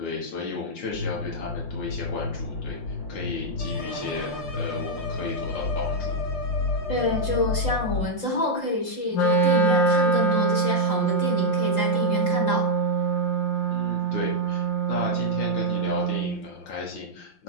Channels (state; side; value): late; right; 5.7 ms